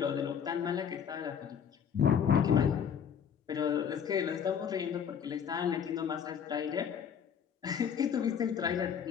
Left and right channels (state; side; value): quieter; right; 7.8 dB